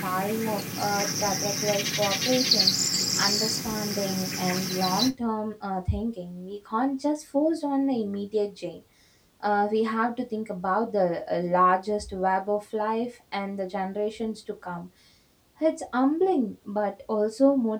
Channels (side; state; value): both; identical; correlation 1.00